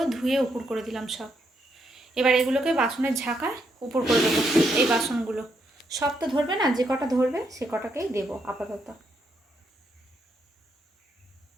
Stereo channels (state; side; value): normal; both; correlation 0.78